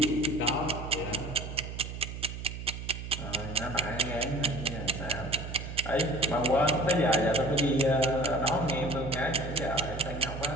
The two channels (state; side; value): noise; right; hum, 8 dB below the sound